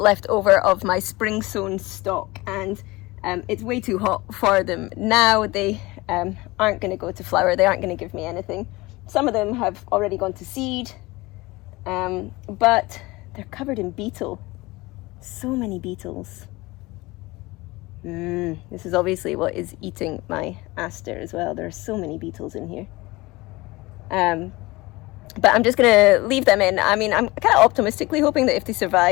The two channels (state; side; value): quieter; right; 21.6 dB